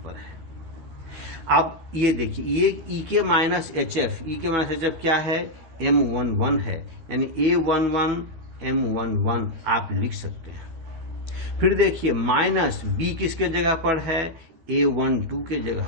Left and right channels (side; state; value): left; late; 13 ms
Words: पर है। अब ये देखिए ये E के माइनस HF, E के माइनस HF क्या है, M11 है, यानी A11 M11 आप लिख सकते हैं। फिर देखिए माइनस B किसके जगह पर है, A12 के जगह